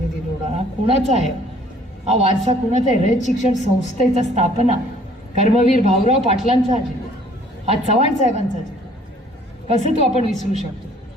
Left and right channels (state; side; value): normal; both; correlation 0.57